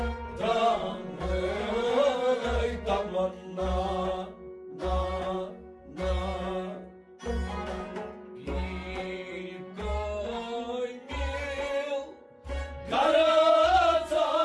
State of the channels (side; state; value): both; identical; correlation 1.00